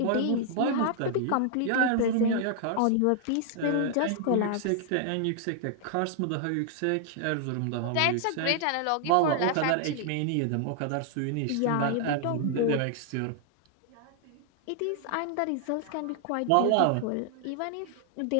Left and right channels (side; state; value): both; different; correlation 0.00